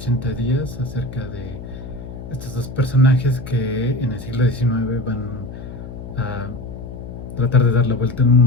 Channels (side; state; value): left; noise; hum, 11 dB below the sound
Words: días acerca de estos dos personajes que en el siglo XIX van a tratar de dar la vuelta al